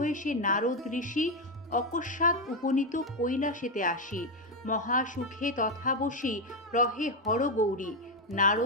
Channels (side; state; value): both; normal; correlation 0.07